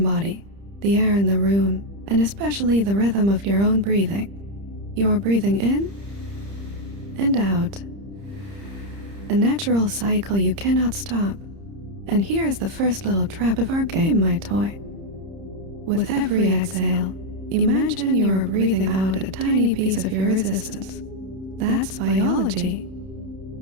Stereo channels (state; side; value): late; left; 30 ms